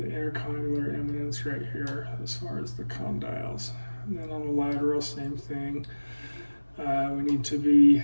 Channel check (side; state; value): both; inverted; correlation -1.00